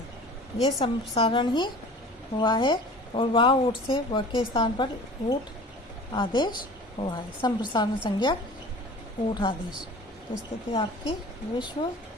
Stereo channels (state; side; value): normal; both; correlation 0.42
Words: ये संप्रसारण ही हुआ है, और वाह ऊठ से व के स्थान पर ऊठ आदेश हुआ है, संप्रसारण संज्ञा ऊठ आदेश। तो स्थिति आपकी विश्व